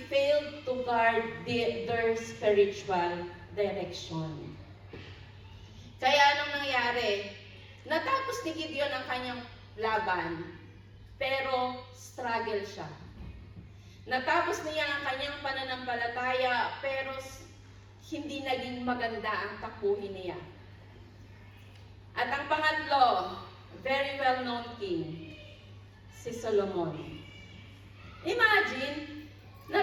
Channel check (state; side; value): identical; both; correlation 1.00